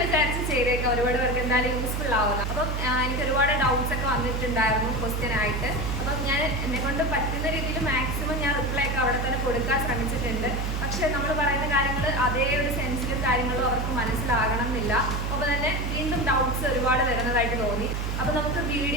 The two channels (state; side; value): noise; right; hum, 1 dB below the sound